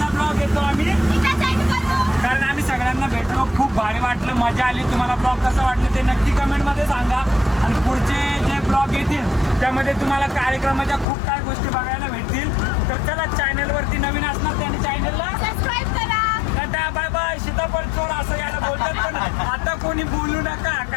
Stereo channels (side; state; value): right; drops out; at 11.1 s